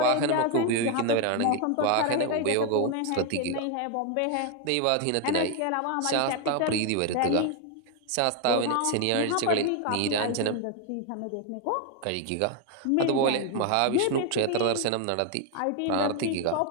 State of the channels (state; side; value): different; both; correlation 0.01